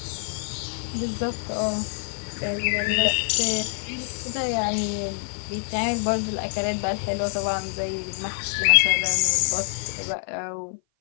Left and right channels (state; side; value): silent; right; 57 dB below the other